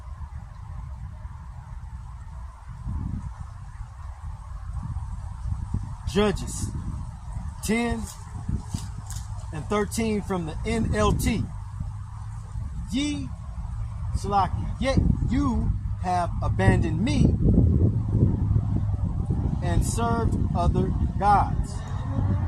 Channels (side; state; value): both; identical; correlation 1.00